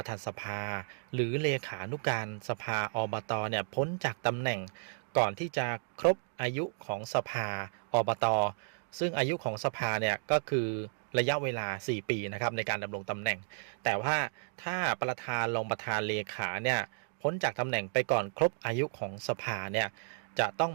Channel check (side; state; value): left; silent; digital silence